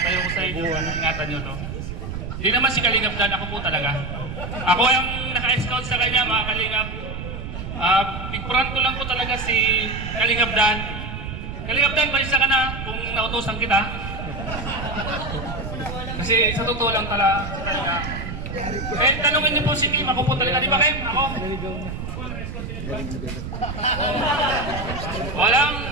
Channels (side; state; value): right; noise; rumble, 7 dB below the sound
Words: ko sa inyo, ingatan nyo to. Hindi naman si Kalingap Dan, ako po talaga. Ako yung naka-scout sa kanya, mga Kalingap. Pigpuran ko lang po talaga si Kalingap Dan. Kalingap Dan, balisa ka na kung nautosan kita. Kasi sa totoo lang talaga. Eh, tanungin niyo po si Kim. Ako po talaga. Di ba, Kim? Ako? Walang...